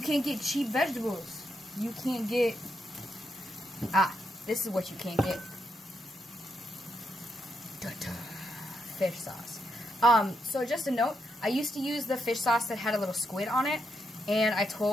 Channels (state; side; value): normal; both; correlation 0.81